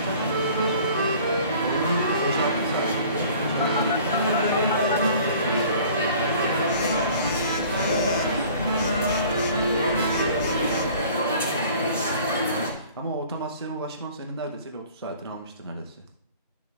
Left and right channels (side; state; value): both; inverted; correlation -0.49